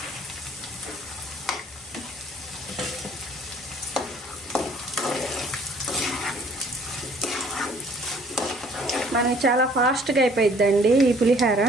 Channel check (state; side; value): normal; both; correlation 0.58